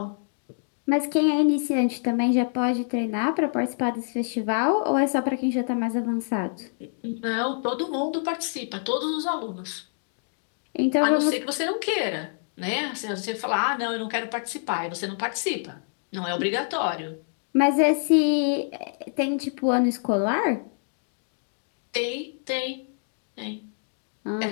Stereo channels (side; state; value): right; silent; digital silence